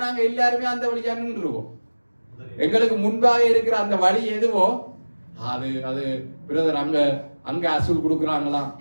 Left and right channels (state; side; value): inverted; both; correlation -1.00